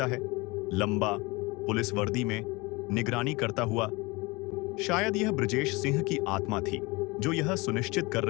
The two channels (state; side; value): quieter; right; 24.8 dB